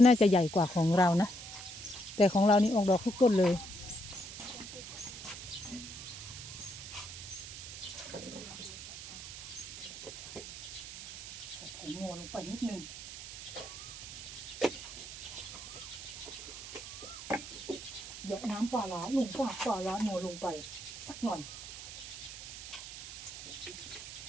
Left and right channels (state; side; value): noise; right; hiss, 11 dB below the sound